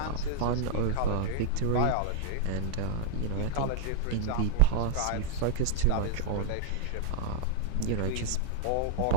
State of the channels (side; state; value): both; different; correlation -0.01